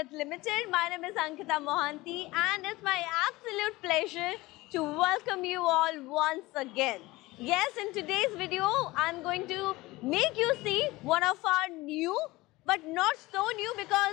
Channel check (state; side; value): quieter; right; 20.2 dB